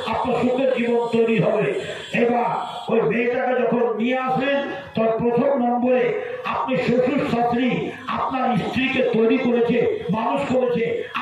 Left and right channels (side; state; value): both; identical; correlation 1.00